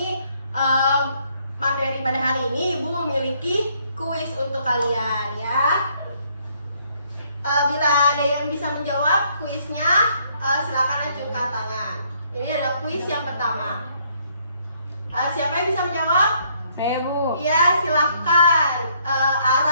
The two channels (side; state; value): both; inverted; correlation -0.68